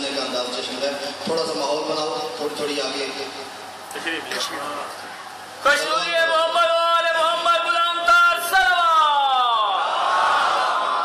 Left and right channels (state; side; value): identical; both; correlation 1.00